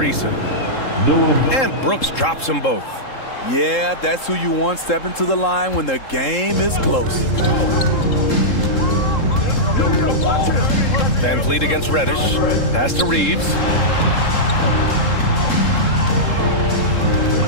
And Brooks drops them both. Yeah, that's who you want stepping to the line when the game is close. Van Vliet against Reddish. Pass to Reeves.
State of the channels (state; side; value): late; right; 3.7 ms